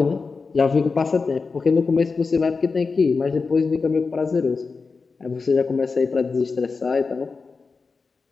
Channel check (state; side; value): quieter; right; 4.5 dB